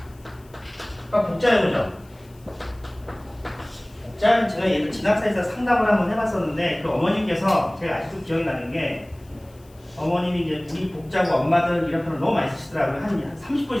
복자여보죠. 복자는 제가 예를 진학사에서 상담을 한번 해봤었는데 그 어머님께서 제가 아직도 기억이 나는 게 어머님이 이제 우리 복자고 엄마들 이런 표현을 너무 많이 쓰시더라고요. 한 30분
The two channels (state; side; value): noise; left; hiss, 29 dB below the sound